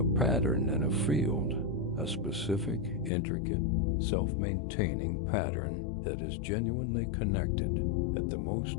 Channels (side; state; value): right; drops out; at 3.1 s